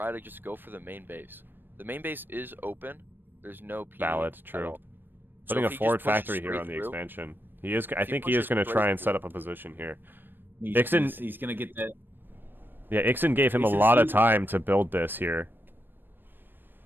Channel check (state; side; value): late; left; 0.095 ms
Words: to just go for the main base. The main base is open. There's no PD. Valid, at true. all. Putting So a if he forward just pushes factory here straight on the through- expansion. He is. I If he think he is pushes going to straight try and through- set up a position here. He's, Ixen- he's gonna get that. Yeah, Ixen gave him a Ixen lot of sees- time to build this here.